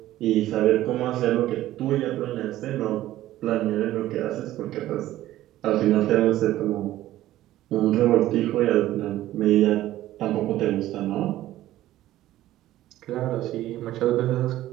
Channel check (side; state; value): left; quieter; 14.5 dB